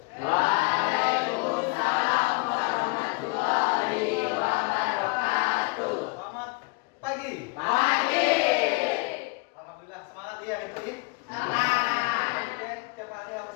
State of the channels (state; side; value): quieter; right; 28.1 dB